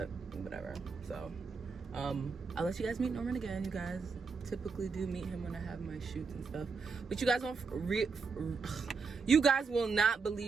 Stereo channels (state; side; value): quieter; left; 4.9 dB